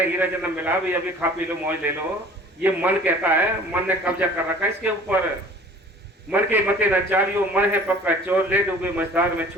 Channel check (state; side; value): normal; both; correlation 0.48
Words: हीरा जन्म मिला भी, अभी खा पी लो, मौज ले लो। ये मन कहता है, मन ने कब्जा कर रखा है इसके ऊपर। मन के मते न चालियो, मन है पक्का चोर, ले डूबे मझधार में